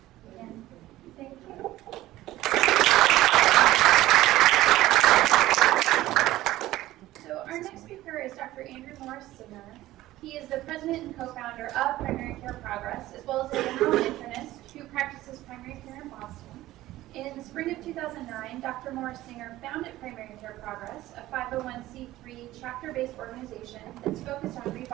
again, thank you. So our next speaker is Dr. Andrew Morris-Singer. He is the president and co-founder of Primary Care Progress, as well as a general internist who practices primary care in Boston. In the spring of 2009, Dr. Morris-Singer founded Primary Care Progress, a 501c3 chapter-based organization that's focused on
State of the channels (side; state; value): left; quieter; 15.9 dB